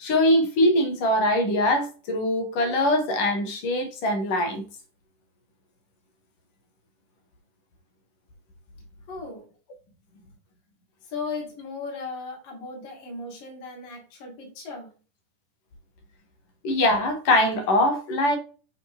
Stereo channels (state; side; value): late; right; 10 ms